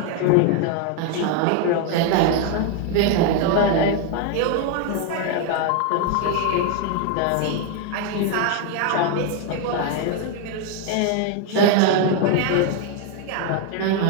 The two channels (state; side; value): different; both; correlation 0.01